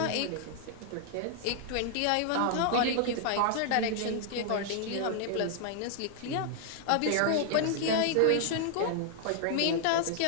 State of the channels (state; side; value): different; both; correlation 0.00